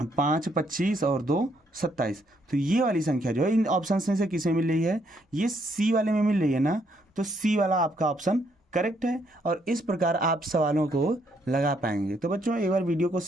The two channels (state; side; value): normal; both; correlation 0.72